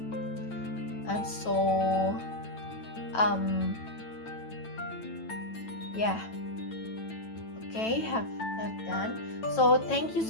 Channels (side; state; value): right; late; 9.1 ms